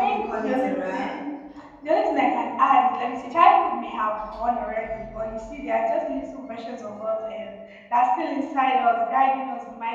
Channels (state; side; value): identical; both; correlation 1.00